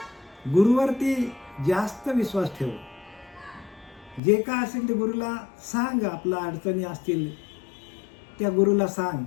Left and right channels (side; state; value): right; drops out; at 4.2 s